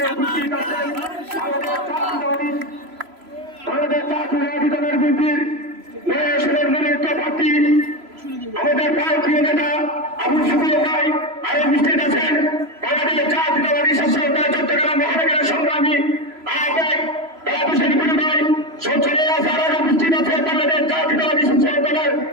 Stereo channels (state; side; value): late; left; 3.0 ms